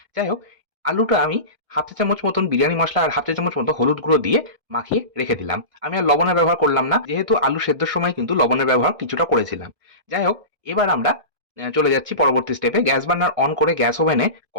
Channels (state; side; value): late; left; 1.6 ms